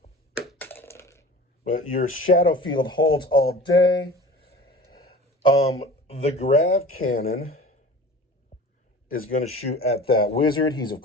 But your shadow field holds all day. The grav cannon is going to shoot at that wizard. He's, of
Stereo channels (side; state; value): both; normal; correlation 0.39